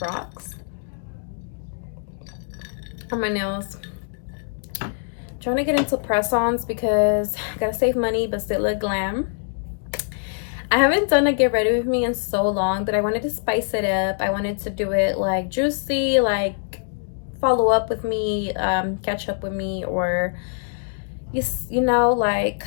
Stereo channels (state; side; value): silent; right; digital silence